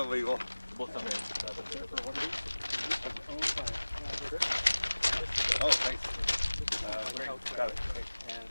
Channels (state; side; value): inverted; both; correlation -1.00